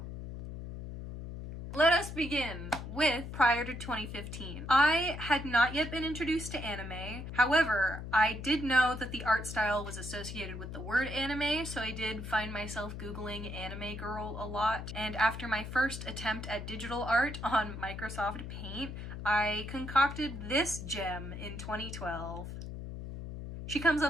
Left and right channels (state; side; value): noise; left; hum, 8 dB below the sound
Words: Let us begin with prior to 2015. I had not yet been introduced to anime. However, I did know that the art style was associated with the word anime, so I did find myself Googling anime girl a lot. And after my first attempt at digital art on Microsoft Paint, I concocted this gem in 2012. She comes